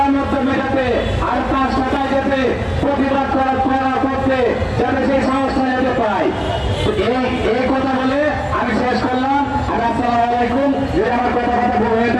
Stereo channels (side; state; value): both; identical; correlation 1.00